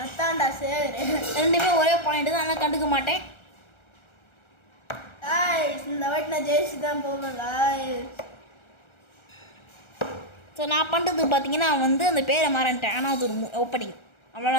சரி. ரெண்டுமே ஒரே பாயிண்ட் தான், ஆனால் கண்டுக்க மாட்டேன். இந்த வாட்டி நான் ஜெயிச்சு தான் போவேன். ஸோ நான் பண்ணுறது பார்த்தீங்கன்னா வந்து அந்த பேரை மாறன்ட்டேன், ஆனால் அது ஒரு ஓப்பனிங்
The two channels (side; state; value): right; late; 1.3 ms